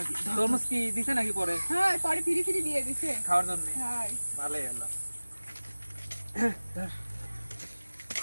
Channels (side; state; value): both; inverted; correlation -1.00